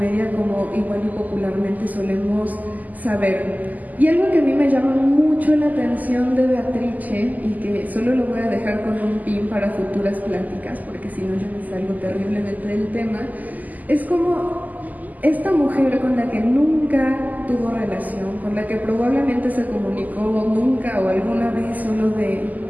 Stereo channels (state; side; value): late; left; 0.080 ms